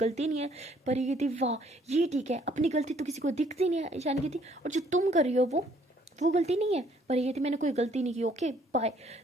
नहीं है। परी कहती वाह ये ठीक है, अपनी गलती तो किसी को दिखती नहीं है। ईशानी कहती और जो तुम कर रही हो वो गलती नहीं है। परी कहती मैंने कोई गलती नहीं की, ओके बाय।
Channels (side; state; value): both; normal; correlation 0.63